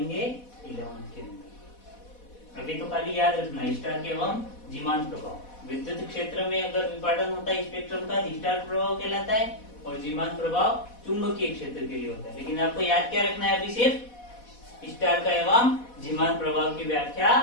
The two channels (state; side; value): late; right; 4.1 ms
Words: 11 के अंदर। अभी तो खाली याद रखना स्टार एवं जीमान प्रभाव। विद्युत क्षेत्र में अगर विपाटन होता है स्पेक्ट्रम का, स्टार प्रभाव कहलाता है, और जीमान प्रभाव चुंबकीय क्षेत्र के लिए होता है। लेकिन आपको याद क्या रखना है? अभी सिर्फ स्टार का एवं जीमान प्रभाव की व्याख्या